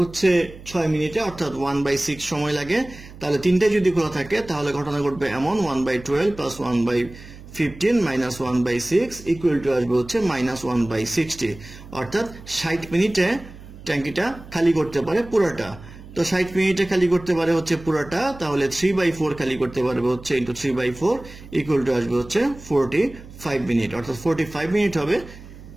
6 মিনিটে, অর্থাৎ 1/6 সময় লাগে, তাহলে তিনটাই যদি খোলা থাকে তাহলে ঘটনা ঘটবে এমন 1/12 প্লাস 1/15 মাইনাস 1/6 ইকুয়াল টু আসবে হচ্ছে -1/60, অর্থাৎ 60 মিনিটে ট্যাঙ্কিটা খালি করতে পারে পুরোটা। তো 60 মিনিটে খালি করতে পারে হচ্ছে পুরোটা, তাহলে 3/4 খালি করতে পারবে হচ্ছে ইন্টু 3/4 ইকুয়াল টু আসবে হচ্ছে 45 মিনিট, অর্থাৎ 45 মিনিট হবে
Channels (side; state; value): right; noise; hum, 17 dB below the sound